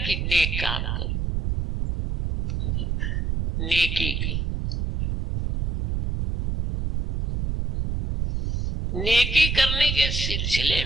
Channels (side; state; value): right; noise; rumble, 1 dB below the sound